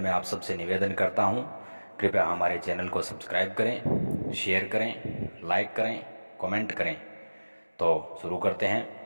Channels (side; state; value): both; inverted; correlation -1.00